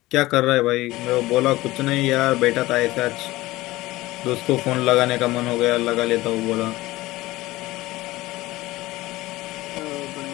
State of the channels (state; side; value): quieter; right; 18.5 dB